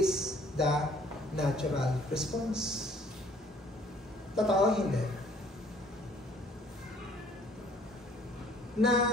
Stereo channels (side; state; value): both; normal; correlation 0.59